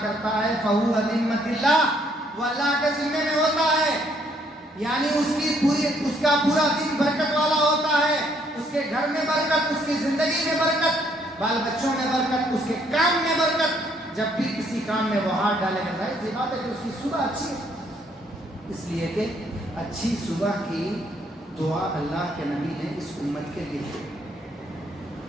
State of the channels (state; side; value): normal; both; correlation 0.68